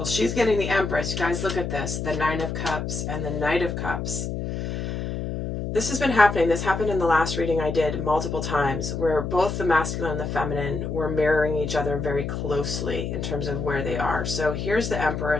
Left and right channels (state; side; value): noise; left; hum, 4 dB below the sound